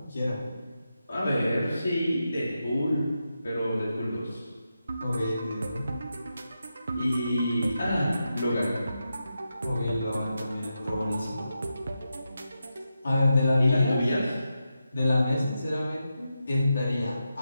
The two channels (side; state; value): both; inverted; correlation -0.88